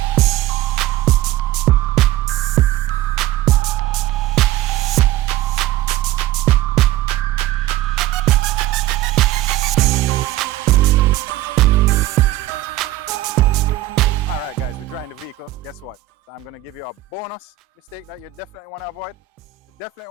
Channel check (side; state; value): left; quieter; 14.6 dB